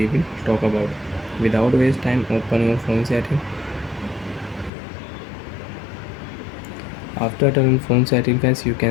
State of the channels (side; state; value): right; drops out; at 4.7 s